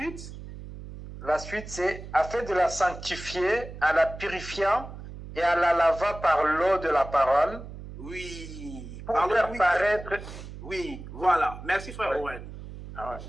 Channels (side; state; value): right; noise; hum, 12 dB below the sound